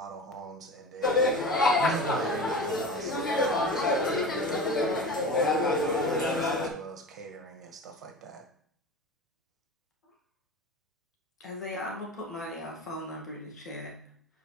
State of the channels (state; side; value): normal; both; correlation 0.32